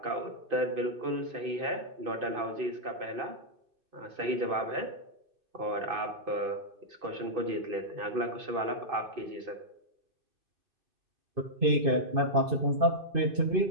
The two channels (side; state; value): left; late; 2.5 ms